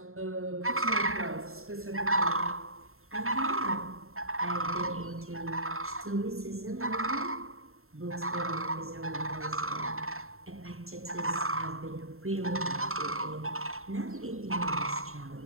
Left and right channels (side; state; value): left; late; 0.62 ms